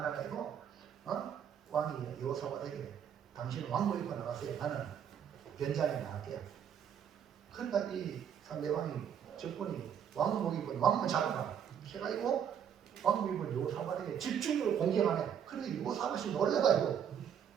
왕이 여호사밧에게 당신은 왕복 입고 나가세요. 나는 변장에 나갈게요. 그러니까 이 상대방이 적군이 왕복 입은 왕만 잡아라 해가지고 왕복 입은 여호사밧에게 집중적으로 공격하네. 그래서 여호사밧이 놀래가지고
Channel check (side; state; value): left; quieter; 8.5 dB